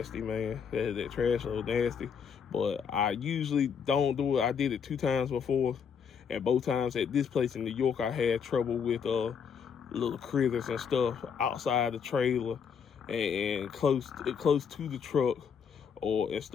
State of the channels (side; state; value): right; quieter; 6.8 dB